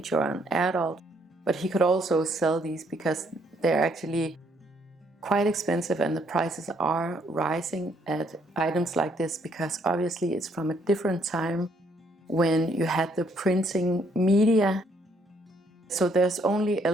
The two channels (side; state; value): both; normal; correlation 0.69